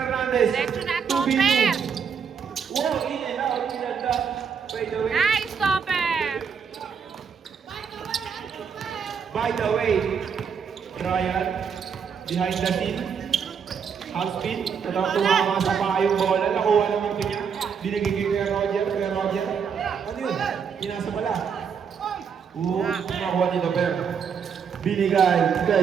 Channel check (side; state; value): left; quieter; 6.8 dB